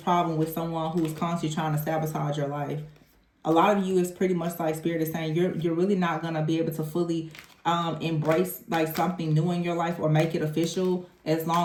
with someone who is constantly trying to sabotage your life. A lot of you is pretty much like Spirit is saying, you're really not going to be able to fully embrace like something new in your life or make it official as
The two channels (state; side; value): identical; both; correlation 1.00